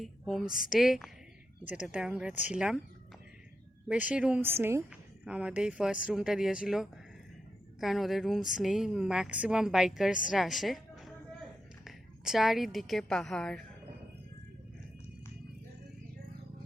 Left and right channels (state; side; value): normal; both; correlation 0.86